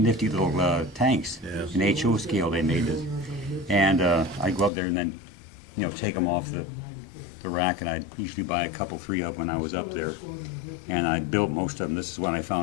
little tanks. Yeah. An HO scale they made this. And I'd go up there and then, take them off the rack, and I'd usually buy a couple, 3 of them when I was up there. And I'd build most of them. This is what I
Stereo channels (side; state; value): right; drops out; at 4.7 s